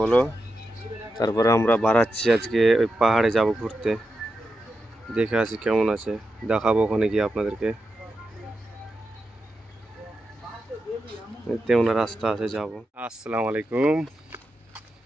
তারপরে আমরা বাড়াচ্ছি আজকে ওই পাহাড়ে যাব ঘুরতে। দেখে আসি কেমন আছে, দেখাবো ওখানে গিয়ে আপনাদেরকে। তেমন রাস্তা আছে যাব। আসসালামু আলাইকুম।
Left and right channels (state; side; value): normal; both; correlation 0.88